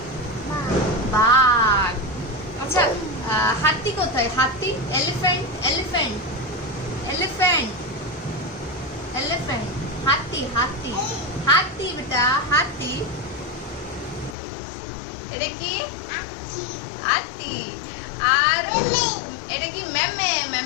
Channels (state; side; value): drops out; right; at 14.4 s